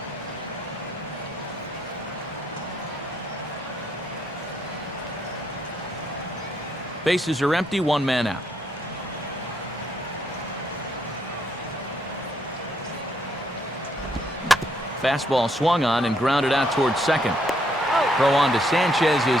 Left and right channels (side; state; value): both; normal; correlation 0.72